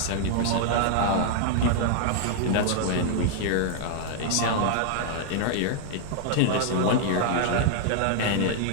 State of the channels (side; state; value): both; different; correlation 0.00